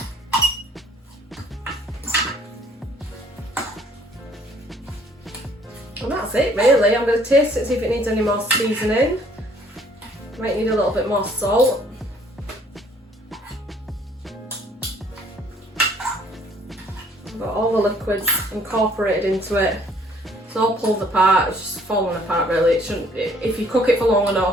And that's it really. I'm going to taste it, see if it needs any more seasoning. Might need a little bit more salt. I've got all the liquids incorporated into it. It's all pulled apart, it's just falling apart really. It shouldn't. If you cook it for long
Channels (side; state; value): both; normal; correlation 0.60